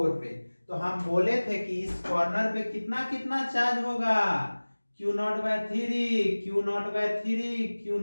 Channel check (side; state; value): both; inverted; correlation -1.00